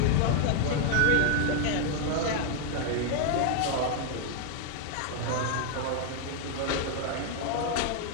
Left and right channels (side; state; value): both; different; correlation 0.00